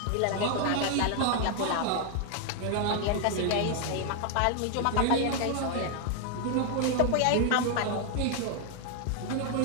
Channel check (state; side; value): different; both; correlation 0.00